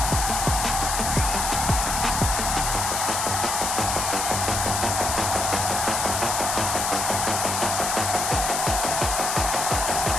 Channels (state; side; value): noise; left; hiss, 1 dB below the sound